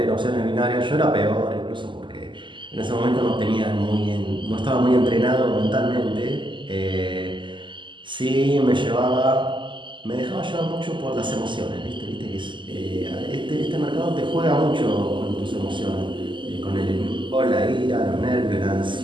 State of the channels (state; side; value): late; left; 0.24 ms